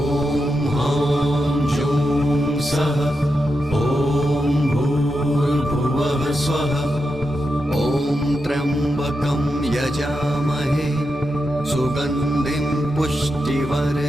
हां जुं सः ॐ भूर्भुवः स्वः ॐ त्र्यम्बकं यजामहे सुगन्धिं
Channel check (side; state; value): both; normal; correlation 0.87